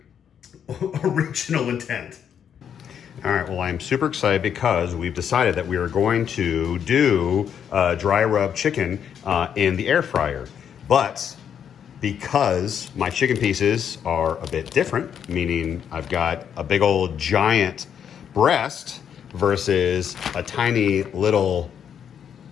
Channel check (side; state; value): right; quieter; 8.4 dB